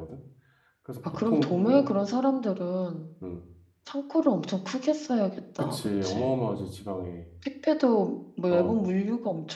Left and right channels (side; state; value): both; identical; correlation 1.00